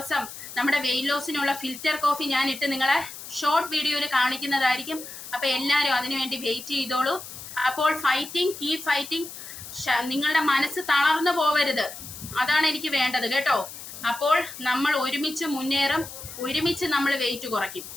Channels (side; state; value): left; noise; hiss, 12 dB below the sound